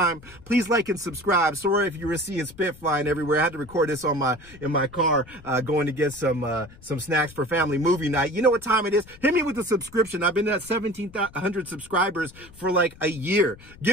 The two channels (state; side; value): noise; left; rumble, 21 dB below the sound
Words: Please like and subscribe. Sorry if you were seeing spit flying everywhere. I had to record this on in my car, going to get some snacks for family movie night. You know what time it is? Hit me with a subscription. I've been at 1,700 subscribers for like a year.